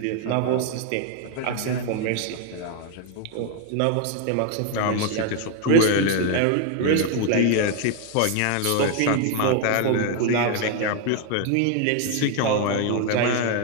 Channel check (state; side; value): different; both; correlation 0.01